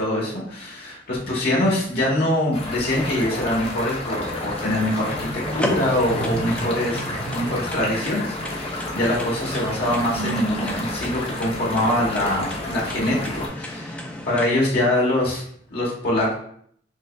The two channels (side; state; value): both; normal; correlation 0.43